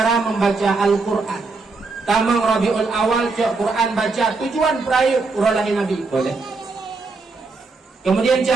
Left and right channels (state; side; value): quieter; left; 3.9 dB